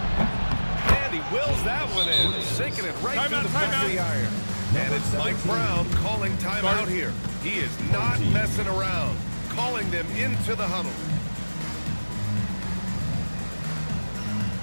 And he wills that one in. Sinking it right through the back of the iron. And it's Mike Brown calling timeout here. He is not messing around. Calling them into the huddle.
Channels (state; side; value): inverted; both; correlation -1.00